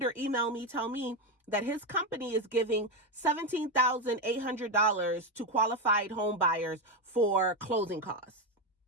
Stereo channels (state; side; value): normal; both; correlation 0.10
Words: email me, tell me that his company is giving $17,800 to qualified home buyers for closing costs.